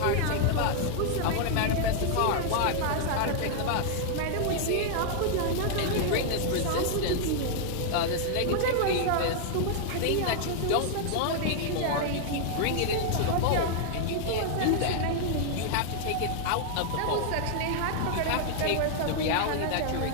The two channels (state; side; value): different; both; correlation 0.00